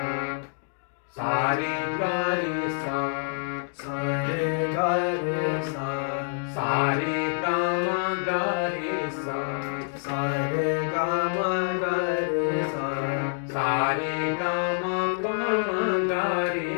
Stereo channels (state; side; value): silent; right; digital silence